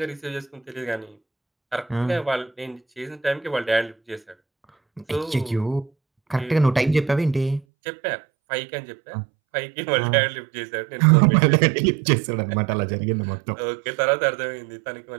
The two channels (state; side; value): drops out; left; at 7.7 s